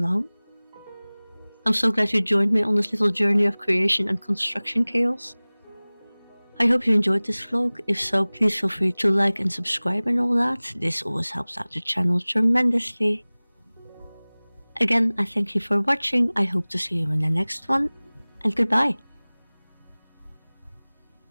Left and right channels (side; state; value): both; inverted; correlation -1.00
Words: I'm so glad you joined me on this little journey of creation and construction chaos. I hope you enjoyed this vlog. If so, please feel free to like and subscribe and all that. This always helps out the channel tremendously. Again, I thank you for watching. I hope to see you in the next one, and goodbye.